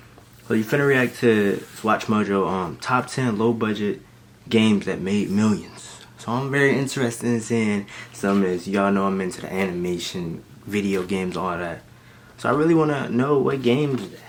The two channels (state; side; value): identical; both; correlation 1.00